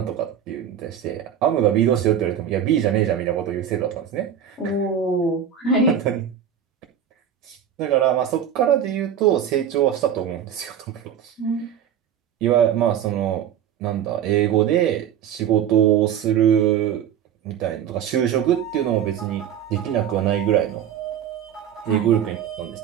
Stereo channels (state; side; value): quieter; left; 9.2 dB